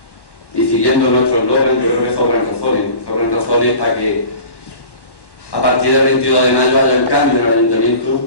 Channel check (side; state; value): right; late; 1.1 ms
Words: y siguiendo nuestro eslogan, yo creo que sobran razones para que a partir del 22 de mayo haya un cambio en el